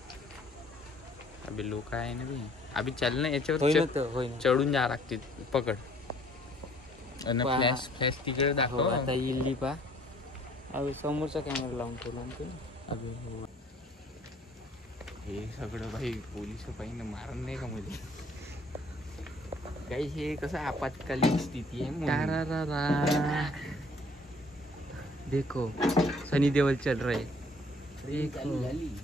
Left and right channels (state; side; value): normal; both; correlation 0.58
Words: अबे लोक आहे ना बी. अभि चाल ना याच्यावर चढून जा लागते. पकड फ्लॅश फ्लॅश तिकडे दाखव. आता इल्ली पा. अबे समोरचा कॅमेरा लावून ठेवला. अबे हो, हे सगळं भाई पोलिस पाहिजे मारण नाही का मध्ये? काही हे कसं आपत्कालीन स्थिती आहे. देखो सनी देओल चल रहे.